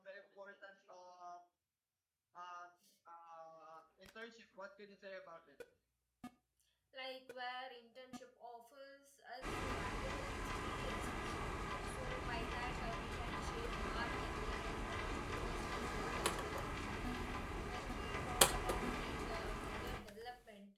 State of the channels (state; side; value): identical; both; correlation 1.00